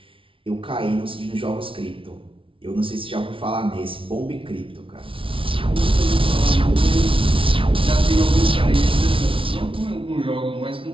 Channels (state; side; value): late; left; 0.25 ms